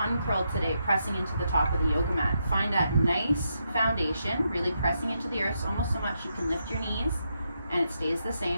today, pressing into the top of the yoga mat. Find that nice foundation, really pressing into the earth almost so much you can lift your knees, and it stays the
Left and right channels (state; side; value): inverted; both; correlation -0.82